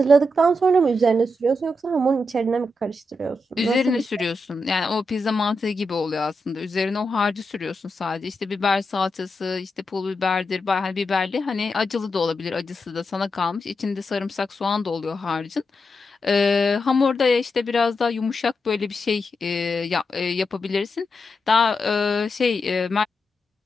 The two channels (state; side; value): normal; both; correlation 0.86